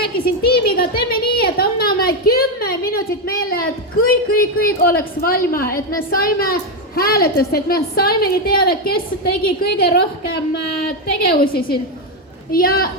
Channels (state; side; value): normal; both; correlation 0.07